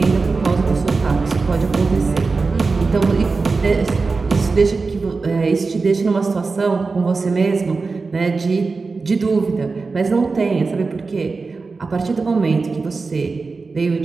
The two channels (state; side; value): quieter; left; 4.2 dB